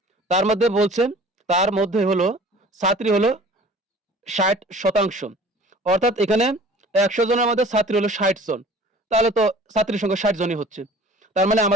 তার মধ্যে বলছে, তার মধ্যে হলো ছাত্রী হলো 60%। অর্থাৎ এখানে 100 জনের মধ্যে ছাত্রী হলো 60 জন, তাহলে তো ছাত্রীর সংখ্যা 60 জনই হচ্ছে। তার মানে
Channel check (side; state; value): both; normal; correlation 0.47